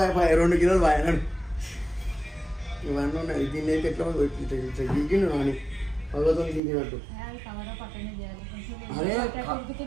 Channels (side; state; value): left; drops out; at 6.6 s